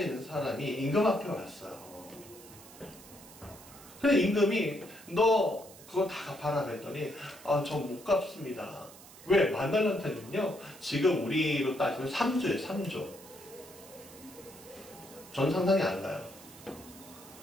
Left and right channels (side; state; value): right; noise; hiss, 19 dB below the sound